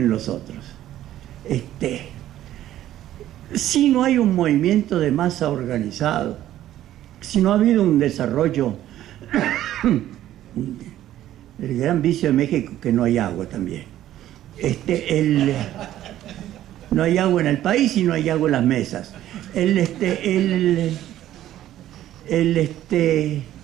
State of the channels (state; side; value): quieter; left; 12.9 dB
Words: los otros. Si no hay un movimiento de masa organizado, si no ha habido un desarrollo, el gran vicio de México, que no hay agua también. No hay agua en el país y no hay agua en las mesas.